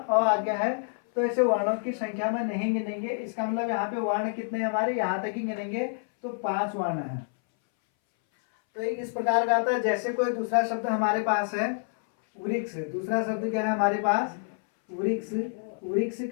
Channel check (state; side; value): silent; right; 60 dB below the other